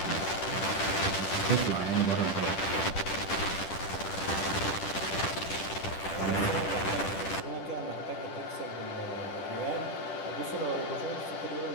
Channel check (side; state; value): right; late; 10 ms